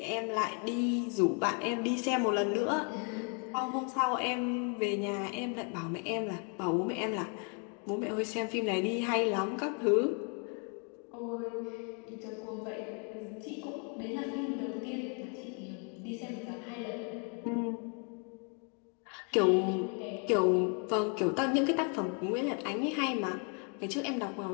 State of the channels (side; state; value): right; quieter; 38.8 dB